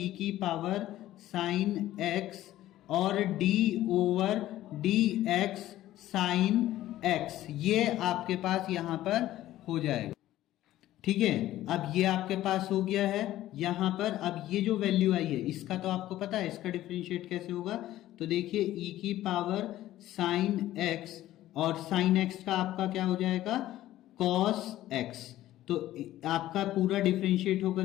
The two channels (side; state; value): right; quieter; 14.4 dB